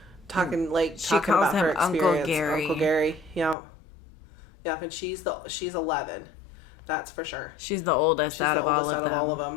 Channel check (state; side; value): drops out; right; at 3.6 s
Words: Talking calls about her him Uncle experience. Gary. Uncle Gary. Yeah. Yeah, and she's 11. That's for sure. She's the oldest She's the oldest out of all of